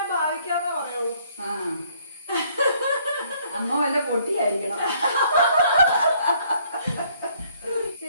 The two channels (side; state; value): both; inverted; correlation -0.65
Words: ഭാവിക്കാന്നേ പറയുള്ളൂ. അമ്മ വല്ല പൊട്ടിയായിരിക്കണം.